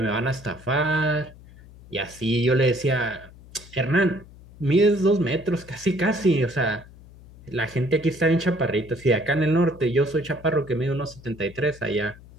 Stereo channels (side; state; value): left; noise; hum, 21 dB below the sound